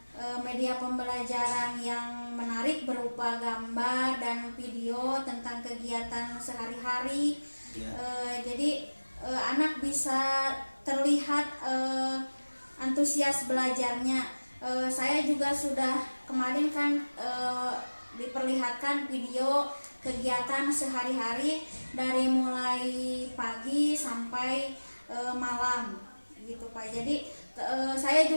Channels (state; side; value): inverted; both; correlation -1.00